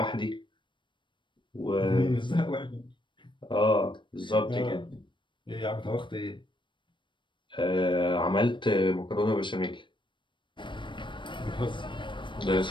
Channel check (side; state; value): right; late; 0.23 ms